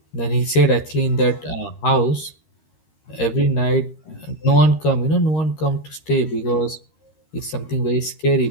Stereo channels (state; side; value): late; right; 13 ms